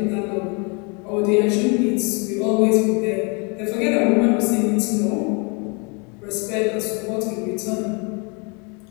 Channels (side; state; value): right; quieter; 33.0 dB